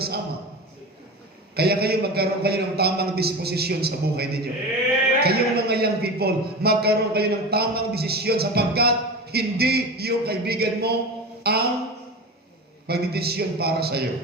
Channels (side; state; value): both; normal; correlation 0.28